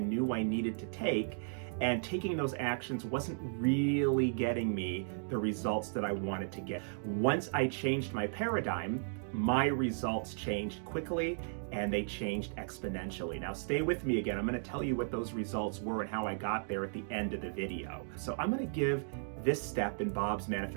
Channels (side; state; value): left; silent; digital silence